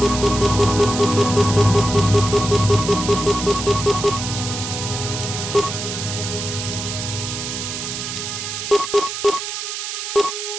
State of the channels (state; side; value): noise; right; hiss, 5 dB below the sound